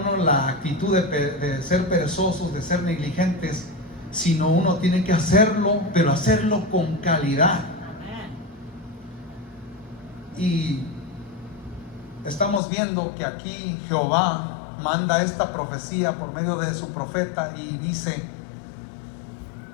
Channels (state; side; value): drops out; right; at 12.6 s